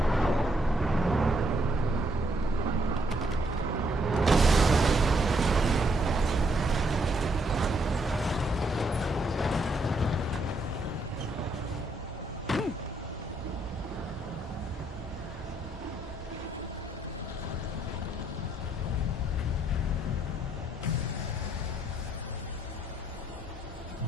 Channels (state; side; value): normal; both; correlation 0.72